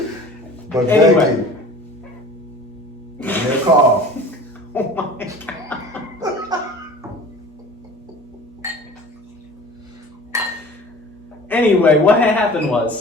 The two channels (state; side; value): normal; both; correlation 0.43